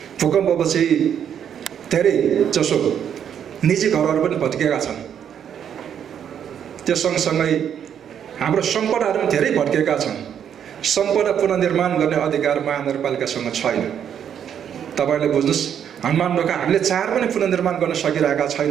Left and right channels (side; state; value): left; quieter; 8.8 dB